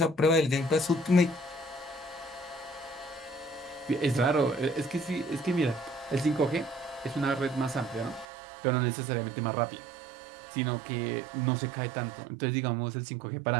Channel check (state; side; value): drops out; left; at 8.2 s